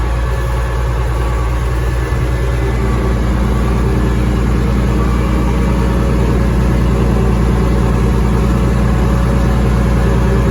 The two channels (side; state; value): both; identical; correlation 1.00